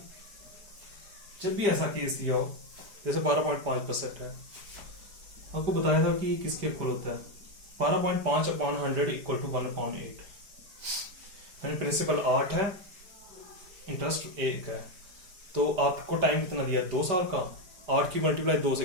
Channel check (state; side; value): late; left; 5.1 ms